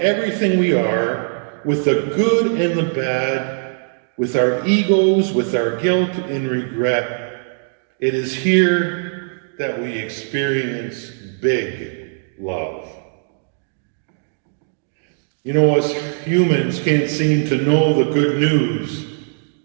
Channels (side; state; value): left; silent; 66 dB below the other